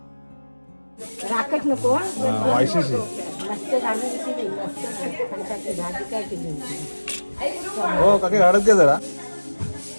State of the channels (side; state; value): both; inverted; correlation -1.00